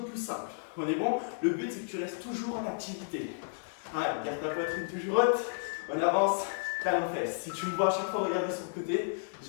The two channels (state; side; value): silent; right; digital silence